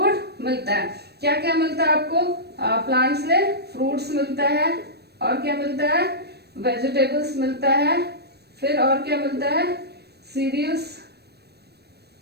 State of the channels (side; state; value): left; late; 0.47 ms